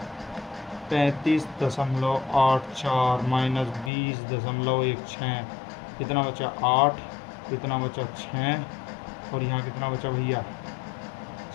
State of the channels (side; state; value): right; drops out; at 3.9 s